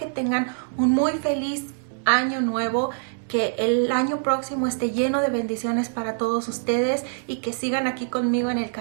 tengan un muy feliz año nuevo, que el año próximo esté lleno de bendiciones para todos ustedes y que sigan aquí conmigo en el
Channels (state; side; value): silent; left; 62 dB below the other